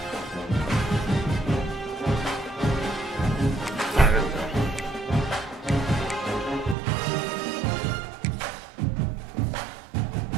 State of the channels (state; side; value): drops out; left; at 6.8 s